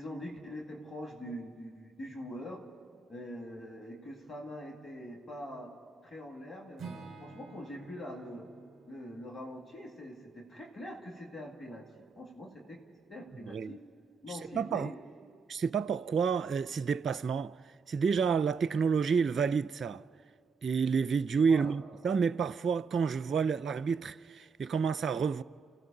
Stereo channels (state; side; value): quieter; left; 5.2 dB